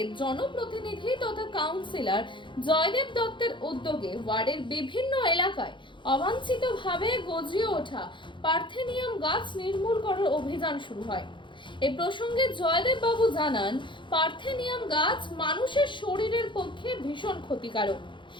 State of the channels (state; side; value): late; right; 0.23 ms